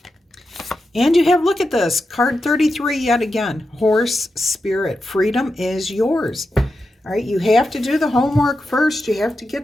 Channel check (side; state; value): both; normal; correlation 0.89